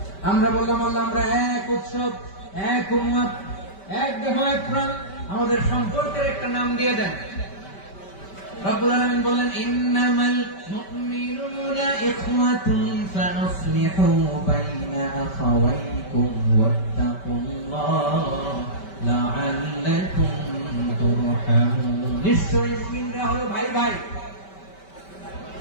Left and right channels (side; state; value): right; late; 5.2 ms